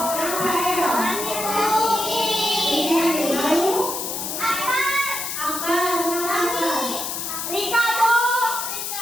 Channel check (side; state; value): left; noise; hiss, 4 dB below the sound